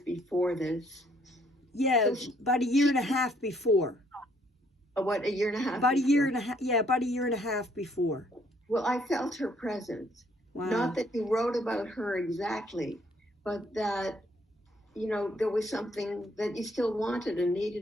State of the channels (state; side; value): normal; both; correlation 0.67